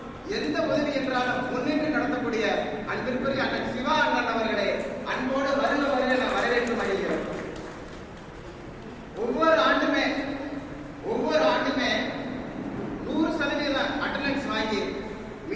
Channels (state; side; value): identical; both; correlation 1.00